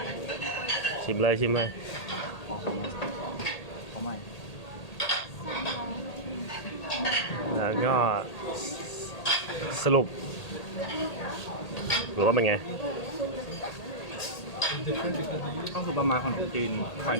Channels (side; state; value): right; late; 1.8 ms